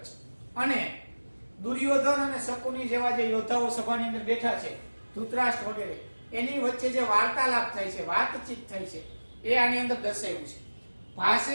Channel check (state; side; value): inverted; both; correlation -1.00